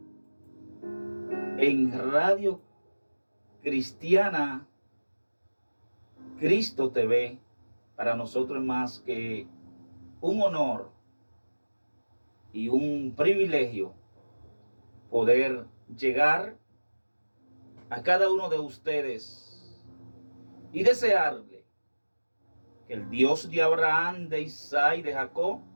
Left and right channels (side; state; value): both; inverted; correlation -1.00